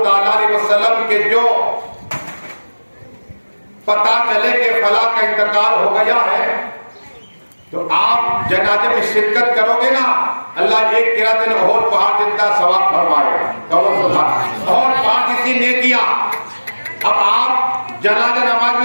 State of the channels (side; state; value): both; inverted; correlation -1.00